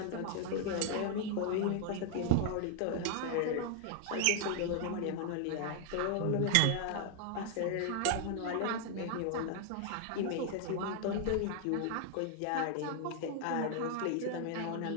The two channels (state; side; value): different; both; correlation 0.00